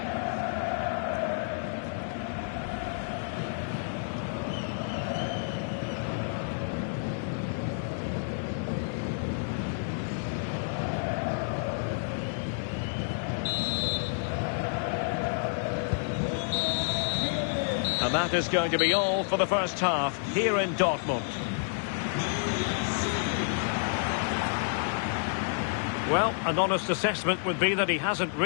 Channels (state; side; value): silent; right; digital silence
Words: And that is going to be all for the first half here in Dortmund. Well, an honest assessment would be that he hasn't